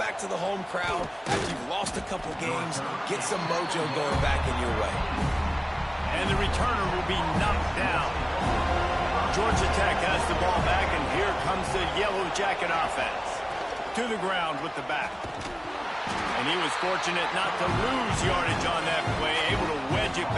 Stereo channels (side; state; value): both; identical; correlation 1.00